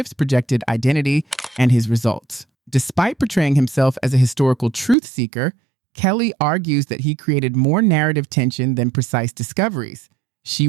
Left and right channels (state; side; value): drops out; left; at 5.0 s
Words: projected identity and his results. Despite portraying himself as a historical truth seeker, Kelly argues that he created more narrative tension than precise discoveries. She